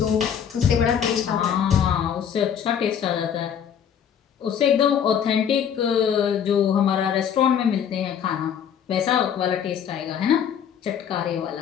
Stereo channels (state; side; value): quieter; right; 8.3 dB